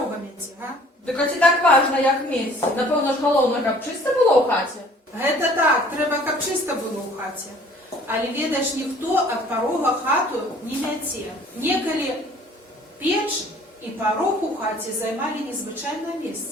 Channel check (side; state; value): both; normal; correlation 0.52